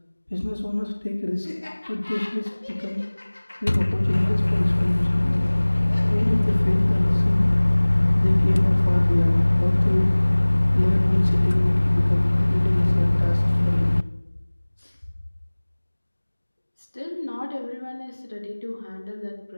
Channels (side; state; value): both; inverted; correlation -1.00